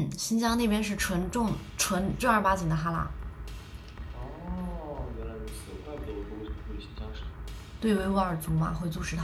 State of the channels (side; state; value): both; identical; correlation 1.00